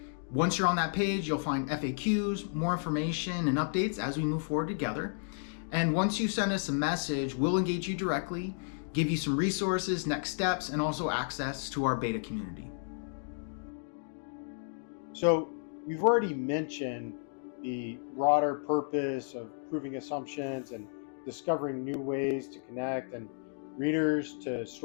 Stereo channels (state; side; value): silent; right; digital silence